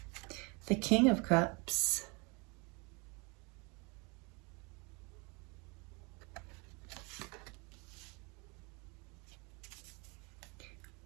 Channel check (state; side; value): quieter; left; 30.0 dB